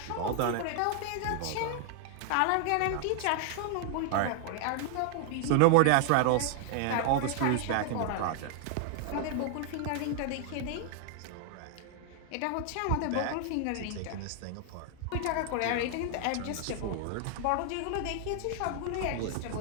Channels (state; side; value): different; both; correlation 0.00